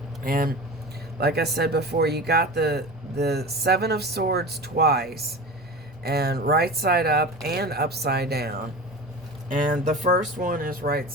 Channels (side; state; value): right; noise; rumble, 26 dB below the sound